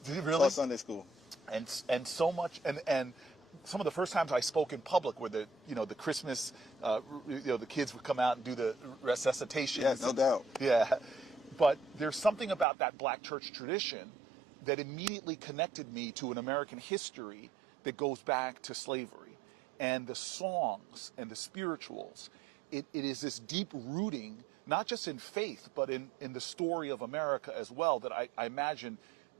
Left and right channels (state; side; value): drops out; left; at 12.7 s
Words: you really? Taught Sunday school. And so much... And some of the first times I spoke in public were the Christmas, the kids would come out and do the resuscitation. Yeah, no doubt. Yeah. But there's something about that black church tradition that immediately connected me to an American history that goes back to slavery. And the songs and the spirituals, it is this deep rooting, not just in faith, but in the story of America as well, that I imagine